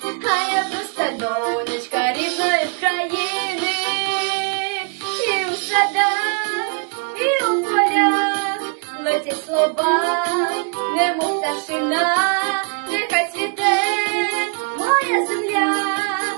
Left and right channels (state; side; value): quieter; left; 37.6 dB